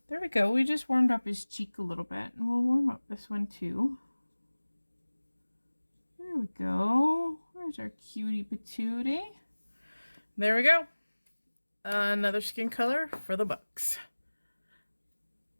There we go. We just warmed up his cheek a little bit, and we'll warm up this one too. There we go. Where's our cutie patootie? There we go. Another skin color for the books.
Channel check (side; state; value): both; inverted; correlation -1.00